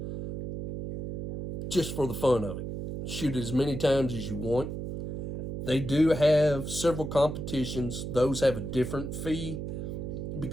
just for the fun of it. Shoot as many times as you want. They do have several competitions. Those have a different fee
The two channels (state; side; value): noise; right; hum, 5 dB below the sound